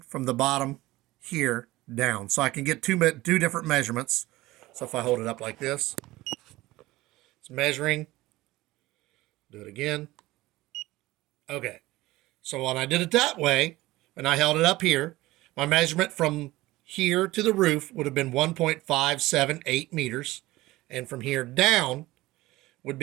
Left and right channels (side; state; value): left; quieter; 18.5 dB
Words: from the bottom here down. So I can get two different measurements. So if I hold it up like this, it's measuring. Do it again. Okay. So when I did it that way, and I held it up here, my measurement from here to the roof would have been 1.578 meters, and from here down would